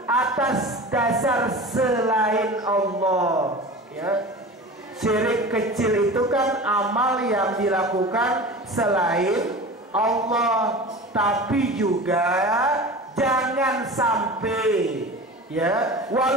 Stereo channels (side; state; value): both; normal; correlation 0.34